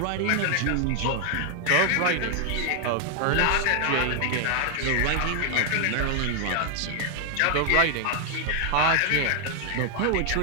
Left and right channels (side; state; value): both; different; correlation 0.00